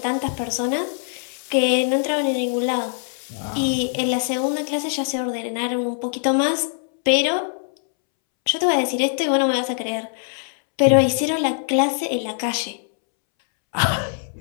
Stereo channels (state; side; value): silent; right; 64 dB below the other